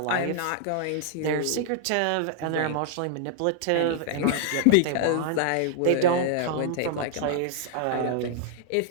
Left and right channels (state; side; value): different; both; correlation -0.01